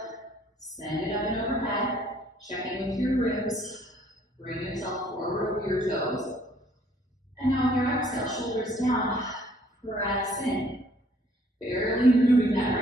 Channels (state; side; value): normal; both; correlation 0.61